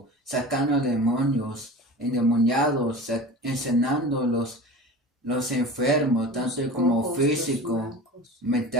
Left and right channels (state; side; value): normal; both; correlation 0.35